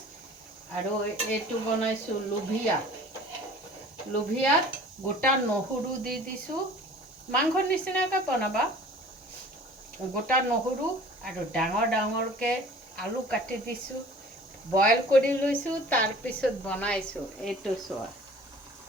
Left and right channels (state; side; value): normal; both; correlation 0.46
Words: আৰু এইটো বনাইছোঁ লোভিয়াত গোটা নহৰু দি দিছোঁ। মাংসৰ নিচিনাকৈ বনাবা। গোটা নহৰু আৰু ডাঙৰ ডাঙৰকৈ আলু কাটি দিছোঁ, বইল কৰি লৈছোঁ, তাৰপিছত বনাইছোঁ। এইটো চোৱা,